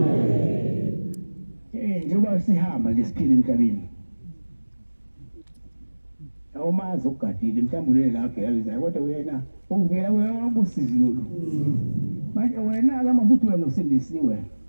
Njengoba sihamba nje siphila emhlabeni awumazi ukugadile mhlawumbe la KwaBhekabezayo kodwa wena uvela wena usizi lolu. Manje wena ake masuthi wena usindisiwe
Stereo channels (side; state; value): both; inverted; correlation -1.00